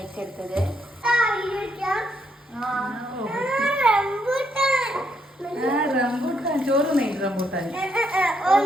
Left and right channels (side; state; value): both; normal; correlation 0.75